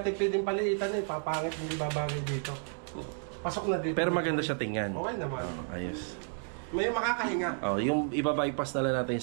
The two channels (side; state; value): left; silent; 57 dB below the other